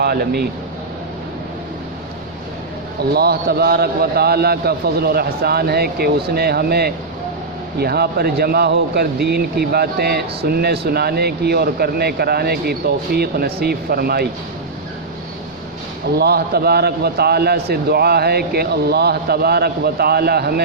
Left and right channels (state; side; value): quieter; left; 3.6 dB